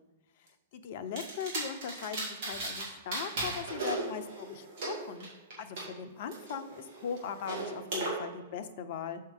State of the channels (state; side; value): inverted; both; correlation -0.31